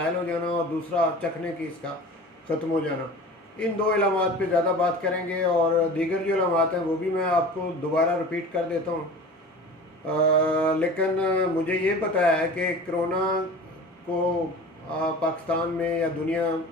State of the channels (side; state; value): both; normal; correlation 0.38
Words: हो जाना और दूसरा चखने की इसका ख़त्म हो जाना, इन दो अलामत पे ज़्यादा बात करेंगे। और दीगर जो अलामत हैं वो भी मैं आपको दोबारा रिपीट कर देता हूँ। लेकिन मुझे ये पता है कि कोरोना को पाकिस्तान में या